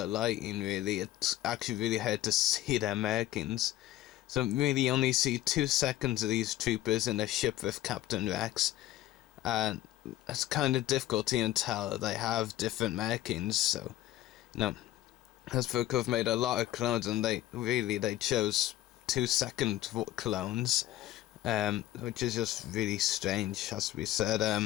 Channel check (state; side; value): quieter; right; 14.6 dB